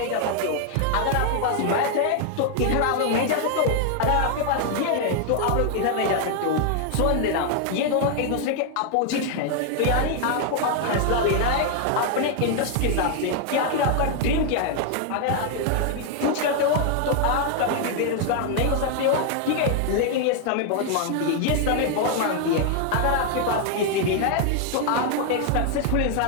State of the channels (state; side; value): different; both; correlation 0.00